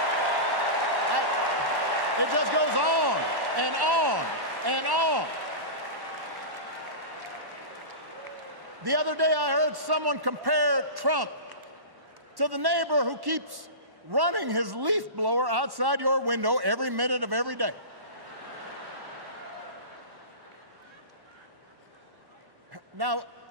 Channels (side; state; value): left; late; 1.1 ms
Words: It just goes on and on and on. The other day I heard someone compare Trump to the neighbor who keeps running his leaf blower outside your window every minute of every day. Now,